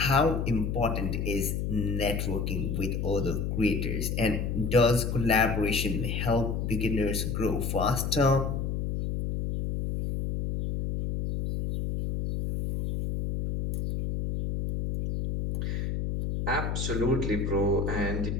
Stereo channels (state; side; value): noise; left; hum, 1 dB below the sound